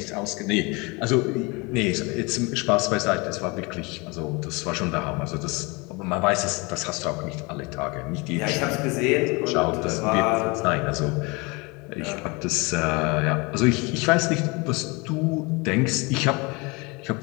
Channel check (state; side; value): quieter; right; 27.2 dB